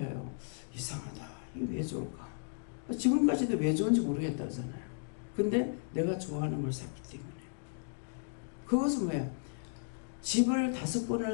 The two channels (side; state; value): right; silent; digital silence